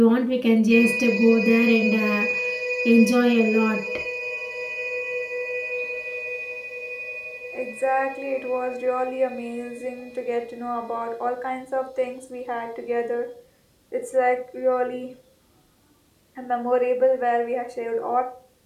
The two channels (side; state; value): both; identical; correlation 1.00